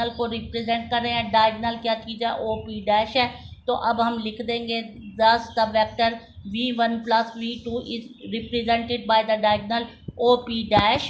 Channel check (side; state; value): both; identical; correlation 1.00